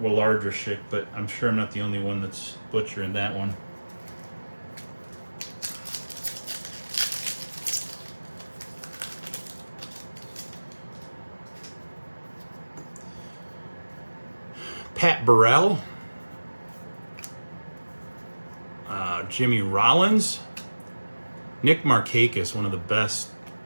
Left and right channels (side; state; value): both; inverted; correlation -1.00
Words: but I'm sure I'm not the only one that's butchering that one. Pat Burrell. Jimmy Rollins. Nick Markakis, one of the best